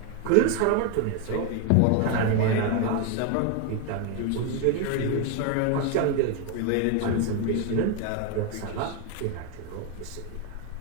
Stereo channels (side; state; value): both; different; correlation 0.01